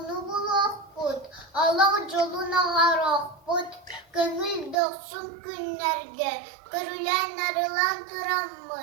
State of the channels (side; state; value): left; drops out; at 4.8 s